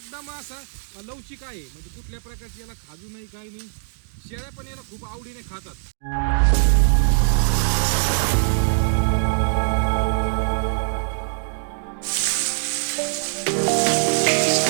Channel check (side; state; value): left; silent; digital silence